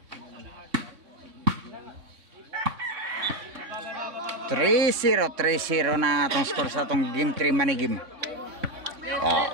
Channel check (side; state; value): left; late; 3.6 ms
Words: Three zero na atong score sa atong game 3 money game.